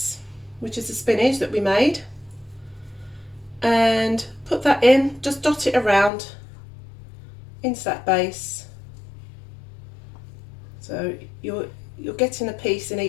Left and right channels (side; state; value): right; drops out; at 6.1 s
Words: which is the spinach that we made, and put that in, just dot it around into that base. So you're getting a piece in